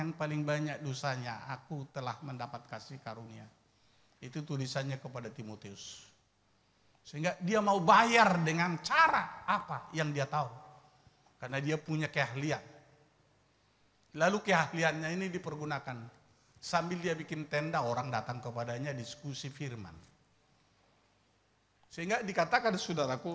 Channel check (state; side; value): identical; both; correlation 1.00